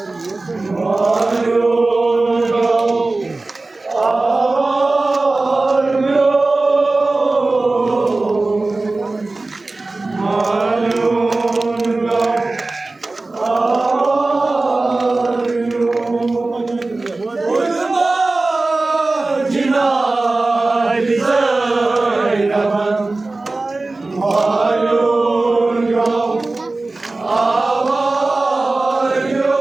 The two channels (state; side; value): quieter; left; 3.2 dB